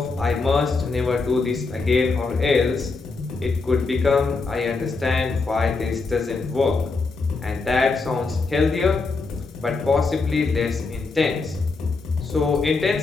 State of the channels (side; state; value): right; quieter; 4.0 dB